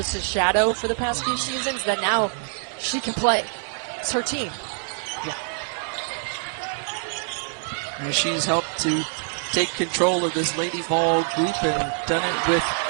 shadow for the past few seasons. That now she can play. It's her team. Yeah. And she's helped to take control of this Lady Vol group and done it with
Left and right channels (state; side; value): silent; left; 58 dB below the other